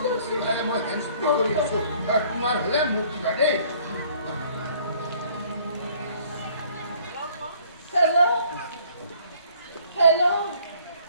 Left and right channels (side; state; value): both; inverted; correlation -0.58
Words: My hands are kumar hale muti bade. Hello,